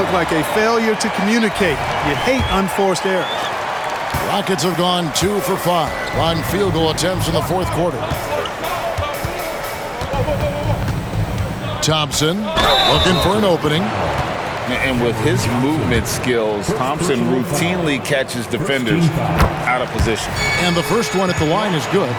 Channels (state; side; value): identical; both; correlation 1.00